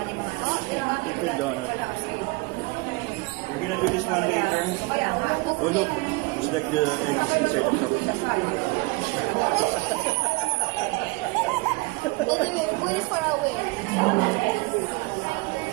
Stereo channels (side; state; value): left; quieter; 25.2 dB